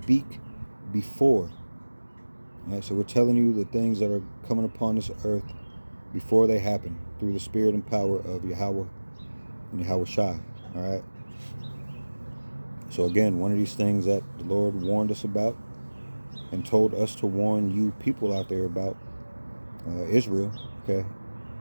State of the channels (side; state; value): both; inverted; correlation -1.00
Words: before. Right, so we're telling you the things that are coming upon this earth before they happen through the spirit and power of Yahweh and Yahweh Shai. All right. So again, one of these things that the Lord warned us about and told us to warn you people out there about, Israel. Okay.